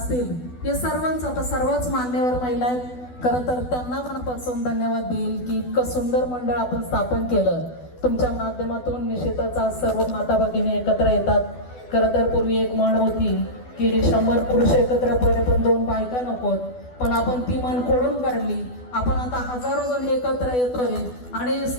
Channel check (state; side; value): late; right; 12 ms